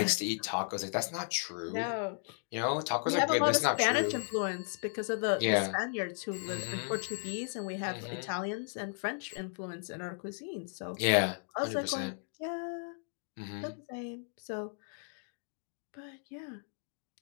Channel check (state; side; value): silent; right; 54 dB below the other